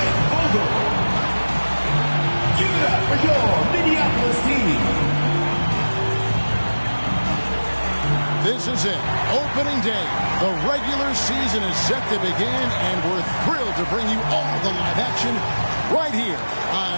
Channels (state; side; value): inverted; both; correlation -1.00